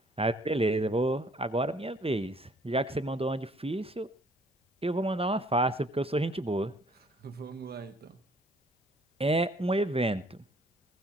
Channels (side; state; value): both; normal; correlation 0.60